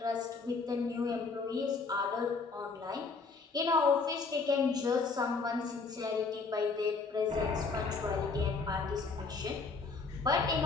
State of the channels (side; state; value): right; quieter; 4.4 dB